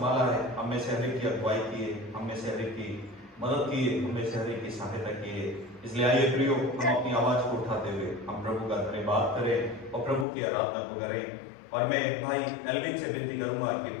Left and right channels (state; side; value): drops out; right; at 10.2 s